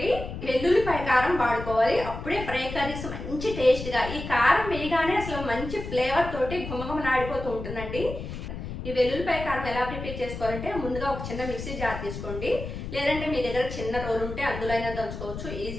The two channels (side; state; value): left; noise; rumble, 8 dB below the sound